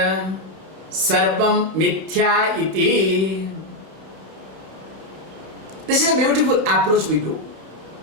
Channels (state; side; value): late; left; 30 ms